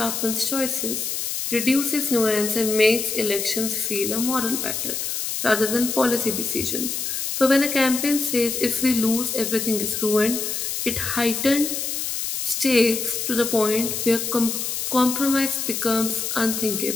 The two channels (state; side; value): noise; left; hiss, 3 dB below the sound